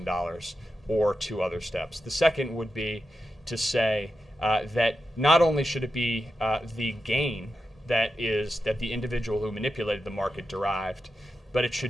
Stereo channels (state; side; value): normal; both; correlation 0.89